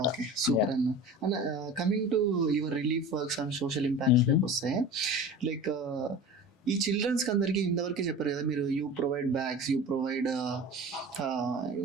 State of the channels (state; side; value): normal; both; correlation 0.36